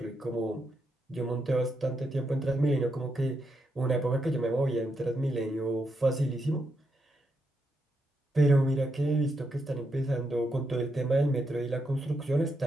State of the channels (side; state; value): both; normal; correlation 0.82